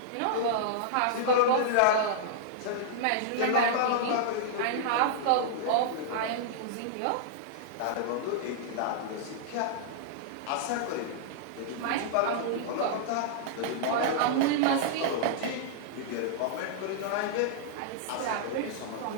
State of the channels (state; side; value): different; both; correlation -0.01